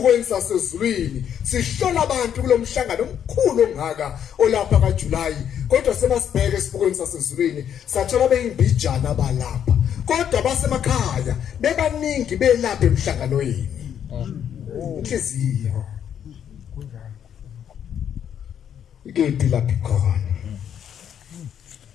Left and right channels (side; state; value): right; quieter; 9.0 dB